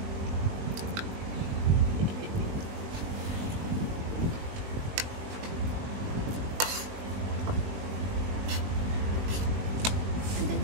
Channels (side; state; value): left; late; 20 ms